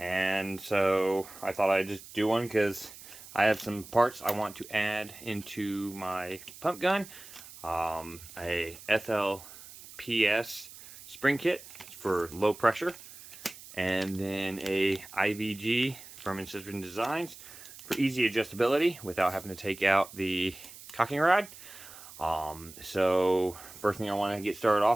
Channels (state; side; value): noise; right; hiss, 17 dB below the sound